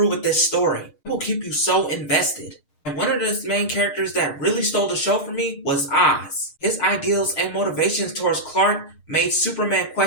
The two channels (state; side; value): late; right; 6.5 ms